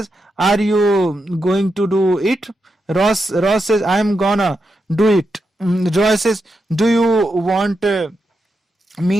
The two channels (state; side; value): normal; both; correlation 0.86